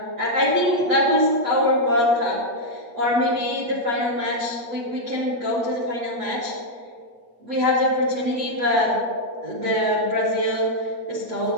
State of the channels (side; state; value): left; late; 8.4 ms